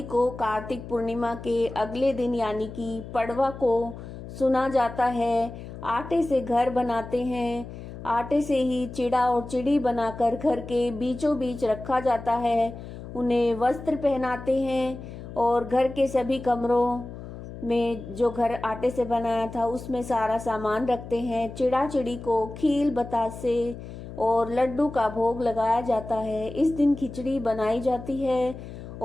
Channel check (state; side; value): noise; left; hum, 12 dB below the sound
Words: को कार्तिक पूर्णिमा के अगले दिन यानी कि पड़वा को सुना जाता है। आटे से घर बनाते हैं। आटे से ही चिड़ा और चिड़ी बनाकर घर के बीचों बीच रखा जाता है। उन्हें वस्त्र पहनाते हैं और घर के सभी कमरों में जो घर आटे से बनाया था उसमें सारा सामान रखते हैं। चिड़ा चिड़ी को खील बतासे और लड्डू का भोग लगाया जाता है। इस दिन खिचड़ी बनाई जाती है